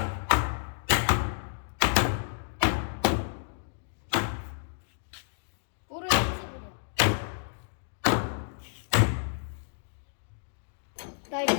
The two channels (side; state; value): right; silent; digital silence